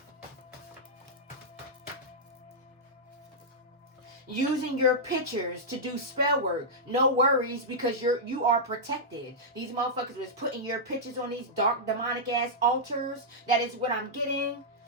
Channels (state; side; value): normal; both; correlation -0.10